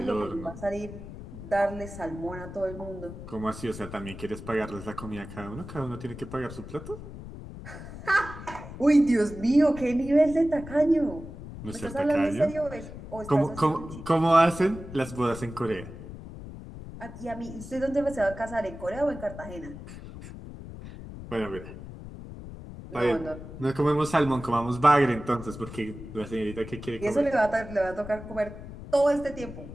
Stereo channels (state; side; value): noise; left; rumble, 12 dB below the sound